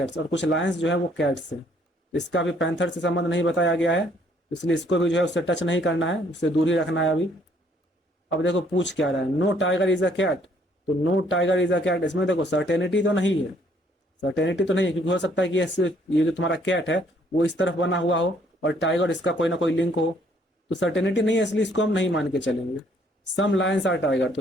और कुछ लायंस जो है वो कैट्स है, इसका भी पैंथर से संबंध नहीं बताया गया है, इसलिए इसको भी जो है उससे टच नहीं करना है, उससे दूर ही रखना है अभी। अब देखो पूछ क्या रहा है, no tiger is a cat, तो no tiger is a cat, इसमें देखो सर्टेनिटी तो नहीं है, सर्टेनिटी तो नहीं है, क्योंकि हो सकता है कि ये जो तुम्हारा कैट है वो इस तरफ बना हुआ हो और टाइगर इसका कोई ना कोई लिंक हो, तो सर्टेनिटी नहीं है, इसलिए इसको हम नहीं मान के चलेंगे। सम लायंस आर टाइगर,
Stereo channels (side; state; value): both; normal; correlation 0.65